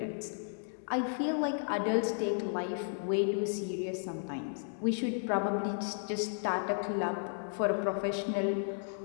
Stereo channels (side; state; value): right; silent; digital silence